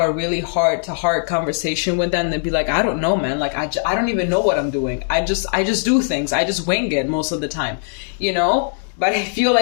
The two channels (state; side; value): silent; right; digital silence